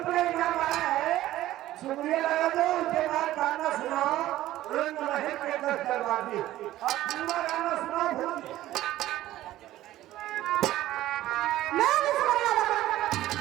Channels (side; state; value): left; quieter; 14.8 dB